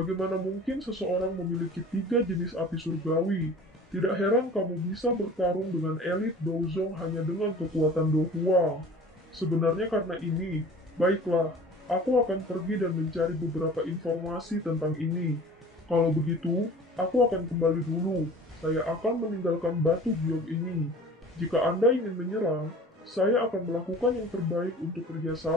mungkin seseorang memiliki tiga jenis api surgawi? Tidak heran kamu bisa bertarung dengan elit Douzong hanya dengan kekuatan Do Huang. Sebenarnya karena ini, baiklah, aku akan pergi dan mencari beberapa informasi tentang ini. Kalau begitu, aku akan kembali dulu. Saya akan meninggalkan batu biok ini. Jika Anda ingin menyerang, saya akan melakukan yang terbaik untuk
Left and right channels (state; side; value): normal; both; correlation 0.43